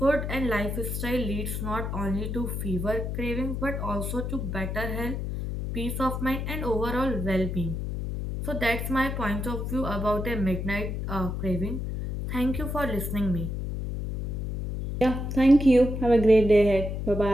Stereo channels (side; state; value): left; noise; hum, 4 dB below the sound